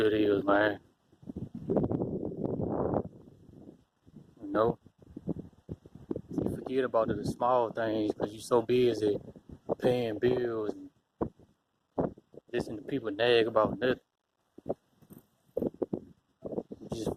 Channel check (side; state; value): both; identical; correlation 1.00